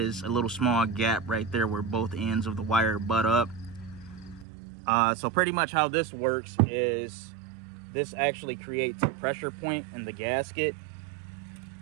a little small gap right there where both ends of the wire butt up. So pretty much how this works is this actually creates a pressure point in the gasket.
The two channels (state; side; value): drops out; left; at 4.5 s